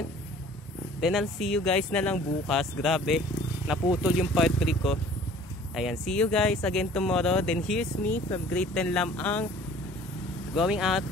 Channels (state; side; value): normal; both; correlation 0.50